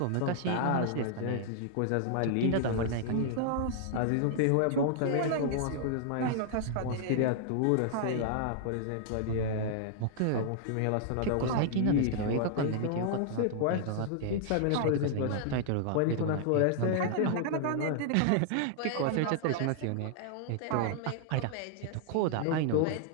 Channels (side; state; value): both; different; correlation -0.01